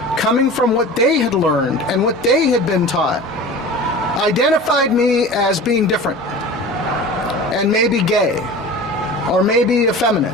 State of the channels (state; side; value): normal; both; correlation 0.36